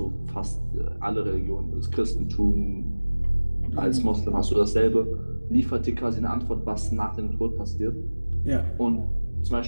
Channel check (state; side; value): inverted; both; correlation -1.00